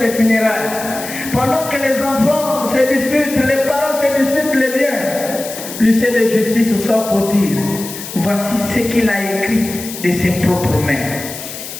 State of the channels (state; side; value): noise; left; hiss, 10 dB below the sound